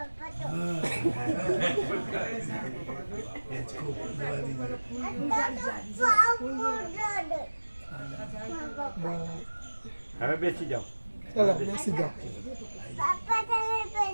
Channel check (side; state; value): both; inverted; correlation -1.00